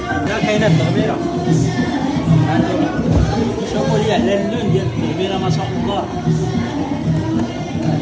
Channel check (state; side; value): identical; both; correlation 1.00